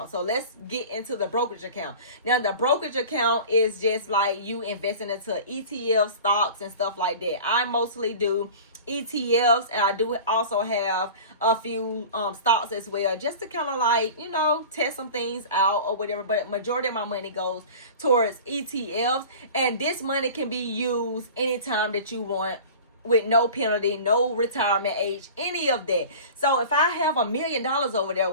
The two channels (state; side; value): inverted; both; correlation -0.38